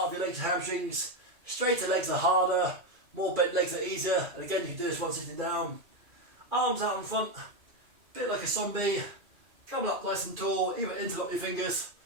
of your legs and hamstrings. Straighter legs are harder, more bent legs are easier. And again, you can do this while sitting down. Arms out in front, a bit like a zombie. Coming up nice and tall, either interlock your fingers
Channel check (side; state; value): left; late; 2.4 ms